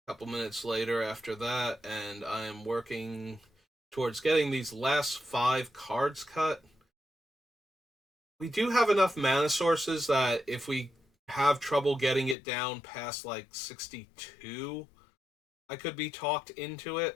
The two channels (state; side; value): drops out; right; at 12.4 s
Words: a couple minutes later after that, and I am working towards getting these last 5 cards cut. We do have enough mana sources that if we have trouble getting it down past like 62, I could be talked into